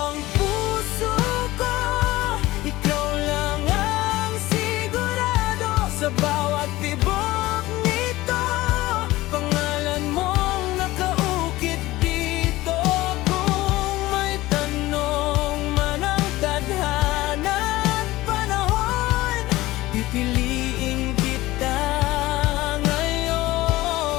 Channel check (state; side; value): quieter; right; 18.0 dB